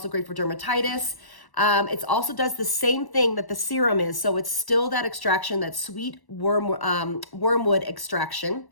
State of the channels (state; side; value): late; right; 1.1 ms